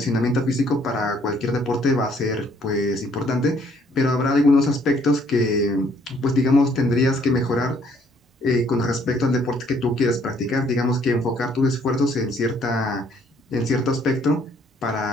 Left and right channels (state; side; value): normal; both; correlation 0.64